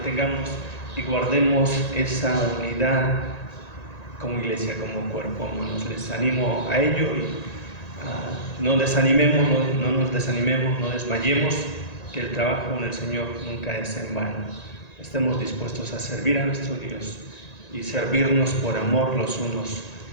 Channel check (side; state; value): right; late; 1.9 ms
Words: y guardemos esa unidad como iglesia, como cuerpo, hermanos. Les animo a ello y no desanimemos, no nos desanimemos, no desmayemos, que el trabajo en el Señor nunca es en vano. Estemos dispuestos a servir a nuestro Dios y servirnos por amor los unos